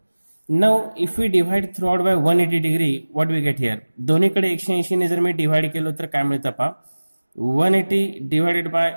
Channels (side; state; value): both; inverted; correlation -1.00